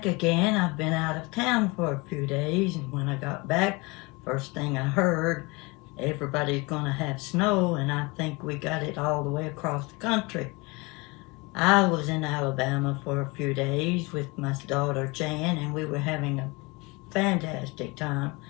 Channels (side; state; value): right; quieter; 26.2 dB